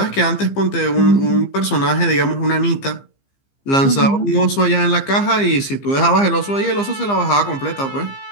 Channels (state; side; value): late; right; 15 ms